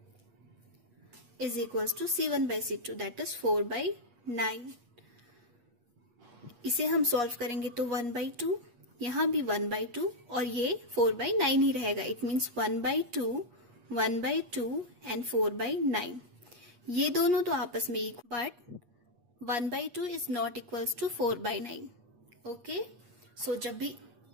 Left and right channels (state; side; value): late; left; 8.4 ms